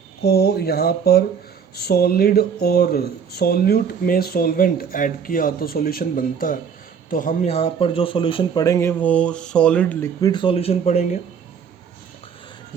यहाँ पर सॉलिड और सॉल्यूट में सॉल्वेंट ऐड किया तो सॉल्यूशन बनता है। तो हम यहाँ पर जो सॉल्यूशन पढ़ेंगे वो सॉलिड लिक्विड सॉल्यूशन पढ़ेंगे,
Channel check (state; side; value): quieter; left; 7.0 dB